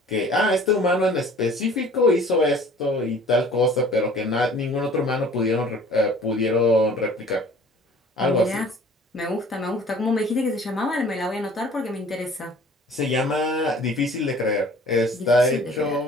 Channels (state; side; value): normal; both; correlation 0.50